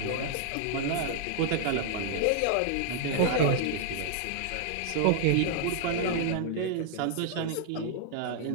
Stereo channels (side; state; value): both; different; correlation -0.01